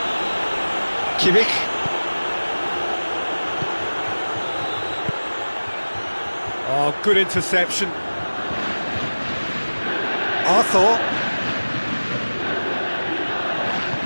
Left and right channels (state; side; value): inverted; both; correlation -1.00